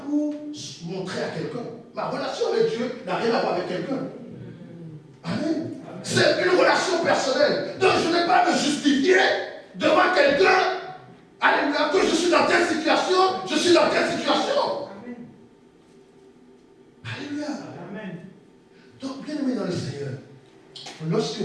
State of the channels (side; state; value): both; identical; correlation 1.00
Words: pour montrer à quelqu'un. Ma relation avec Dieu n'a rien à voir avec quelqu'un. Amen. C'est une relation personnelle. Donc je n'ai pas à me justifier devant quelqu'un. Alléluia, que je suis dans telle situation, je suis dans telle situation. Amen. Alléluia. Amen. Donc, bien aimé dans le Seigneur, lorsque